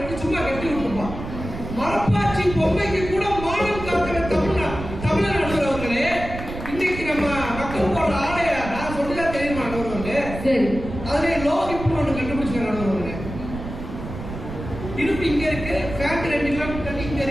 சும்மா கட்டி விட்டுருப்பான். மரப்பாச்சி பொம்மைக்கு கூட மானம் காக்கிற தமிழ்நாடு அவர்களே, இன்னைக்கு நம்ம மக்கள் போடுற ஆடையா நான் சொல்லிதான் தெரியுமா நடுவர்களே? அதுல லோகிப்பு ஒண்ணு கண்டுபிடிச்ச நடுவர்களே. இடுப்பு இங்க இருக்கு, ஃபேண்ட் 2 கிலோமீட்டர் இங்க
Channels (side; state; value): right; noise; rumble, 9 dB below the sound